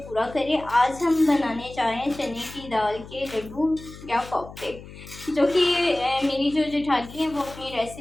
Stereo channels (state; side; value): noise; left; hum, 16 dB below the sound